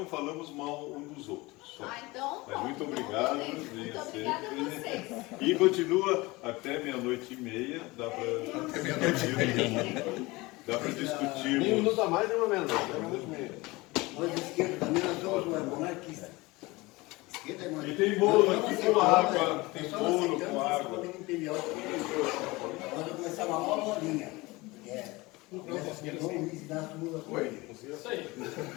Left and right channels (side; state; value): right; quieter; 22.3 dB